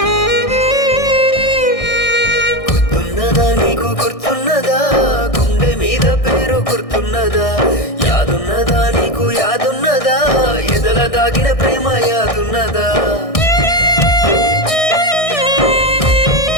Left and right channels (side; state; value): right; late; 1.6 ms